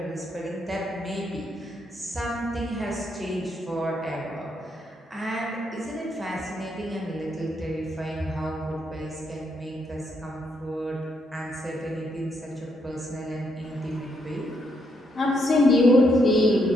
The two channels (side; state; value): both; normal; correlation 0.76